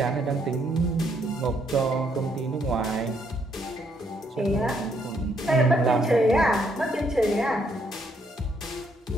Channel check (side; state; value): both; normal; correlation 0.72